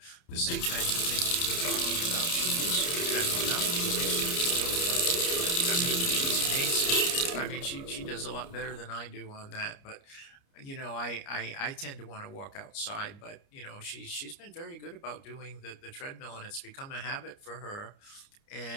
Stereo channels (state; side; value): late; right; 29 ms